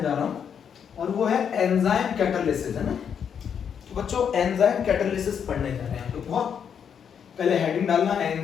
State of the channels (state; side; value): quieter; right; 7.7 dB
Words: जा रहा हूं, और वो है एंजाइम कैटालिसिस, है ना। तो बच्चों एंजाइम कैटालिसिस पढ़ने जा रहे हैं तो बहुत पहले हेडिंग डालना